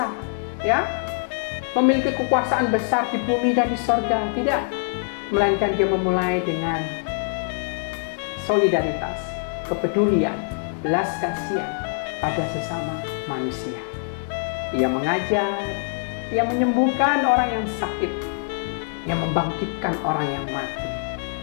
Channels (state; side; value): silent; right; digital silence